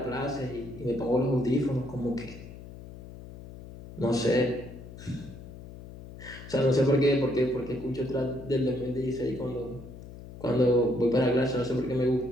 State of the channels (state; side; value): noise; left; hum, 15 dB below the sound